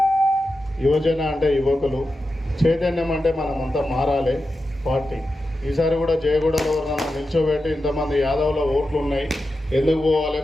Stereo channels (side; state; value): both; normal; correlation 0.90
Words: యువజన అంటే యువకులు, చైతన్యం అంటే మనమంతా మారాలి పార్టీ. ఈసారి కూడా జయగూడలో నన్ను నిల్చోబెట్టి ఇంతమంది యాదవుల ఓట్లు ఉన్నాయి, ఎందుకు పోవాలి,